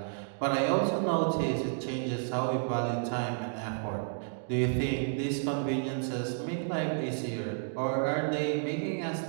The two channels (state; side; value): silent; left; digital silence